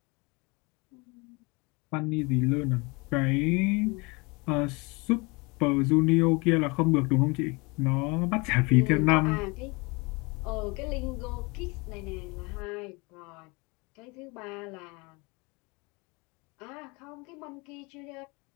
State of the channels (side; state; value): right; quieter; 27.6 dB